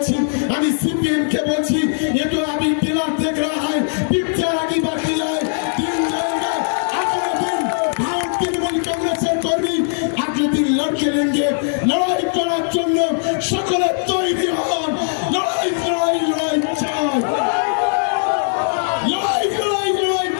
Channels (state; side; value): silent; right; digital silence